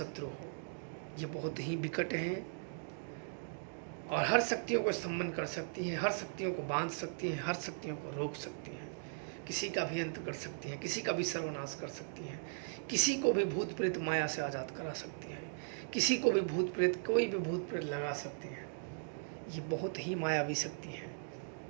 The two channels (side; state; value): left; silent; digital silence